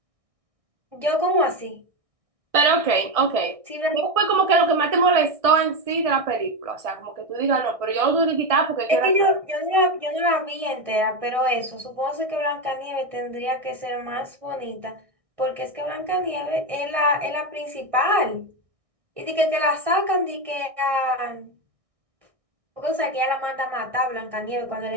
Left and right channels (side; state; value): left; late; 1.6 ms